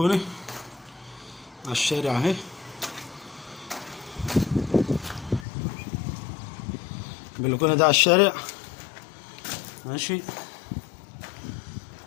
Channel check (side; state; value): right; drops out; at 5.5 s